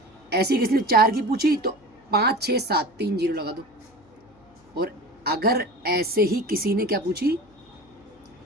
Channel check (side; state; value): left; noise; hum, 30 dB below the sound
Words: ऐसी किसी ने 4 की पूछी तो 5, 6, 7, 3 0 लगा दो। और अगर ऐसे ही किसी ने क्या पूछी